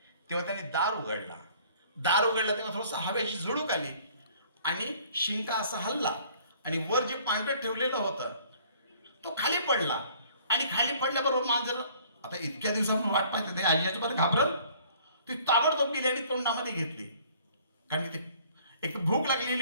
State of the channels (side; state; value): both; inverted; correlation -0.56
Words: तेव्हा त्यांनी दार उघडला. दार उघडला तेव्हा थोडंसं हवेची झुळूक आली आणि शिंका असा हलला आणि वर जे पांढरं ठेवलेलं होतं तो खाली पडला. आणि खाली पडल्याबरोबर मांजर आता इतक्या दिवसापासून वाट पाहते ते आजी आजोबा घाबरल. ती ताबडतोब गेली आणि तोंडामध्ये घेतली. कारण की ते एक भूक